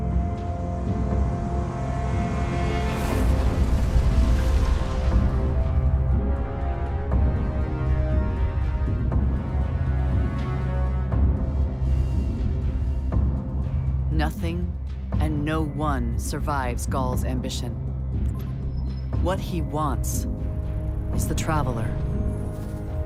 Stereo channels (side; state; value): both; identical; correlation 1.00